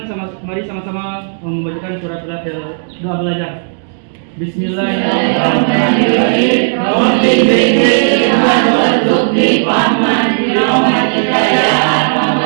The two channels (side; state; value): left; silent; digital silence